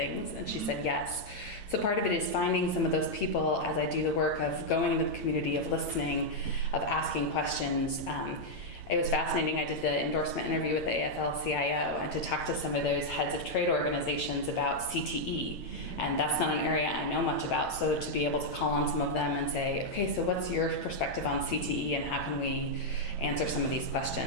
And she said yes. So part of it is finding some of those people as I do the work of going into the community, of listening, of asking questions. It was fascinating. I did the endorsement interview with the AFL-CIO, and to talk to some of those heads of trade organizations about CTE. And that's not an area I know much about. So to be able to call on some of them and say, okay, so what's your perspective on CTE and how can we answer some of these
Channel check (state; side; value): late; right; 9.1 ms